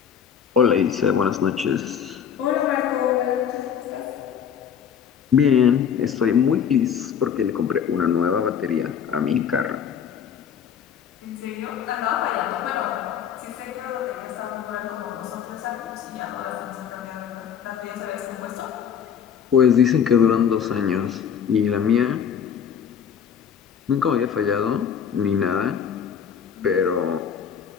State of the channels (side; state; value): right; quieter; 7.9 dB